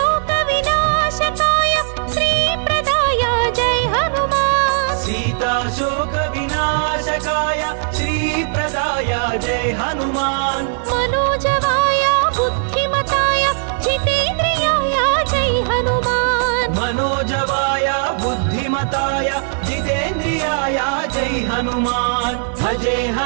विनाशकाय श्री प्रदाय जय हनुमान सीता शोक विनाशकाय श्री प्रदाय जय हनुमान मनोजवाय बुद्धिमताय जितेन्द्रियाय जय हनुमान मनोजवाय बुद्धिमताय जितेन्द्रियाय जय हनुमान भजे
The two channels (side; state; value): left; silent; digital silence